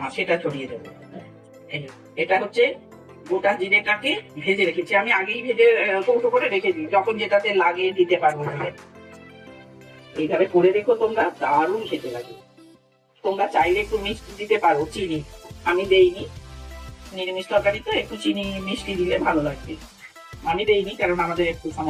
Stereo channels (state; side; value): identical; both; correlation 1.00